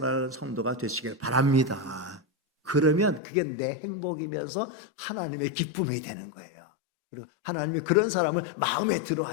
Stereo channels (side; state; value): right; drops out; at 3.2 s